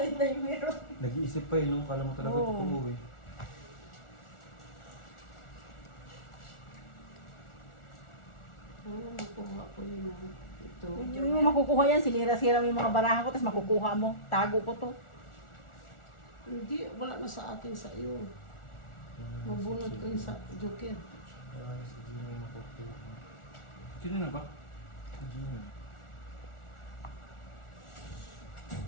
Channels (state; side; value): late; right; 1.4 ms